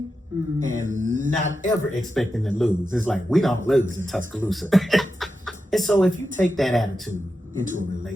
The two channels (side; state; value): both; normal; correlation 0.90